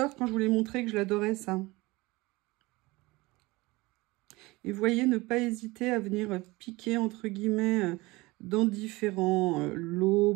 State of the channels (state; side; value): quieter; left; 21.9 dB